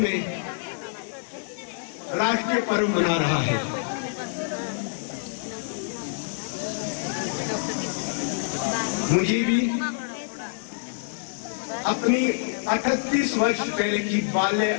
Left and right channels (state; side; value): silent; right; digital silence